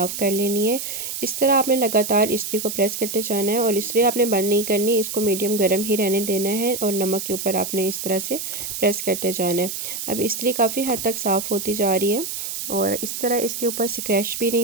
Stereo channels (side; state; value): right; noise; hiss, 5 dB below the sound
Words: कर लेनी है। इस तरह आपने लगातार इस्त्री को प्रेस करते जाना है और इस्त्री आपने बंद नहीं करनी। इसको मीडियम गर्म ही रहने देना है और नमक के ऊपर आपने इस तरह से प्रेस करते जाना है। अब इस्त्री काफ़ी हद तक साफ़ होती जा रही है और इस तरह इसके ऊपर स्क्रैच भी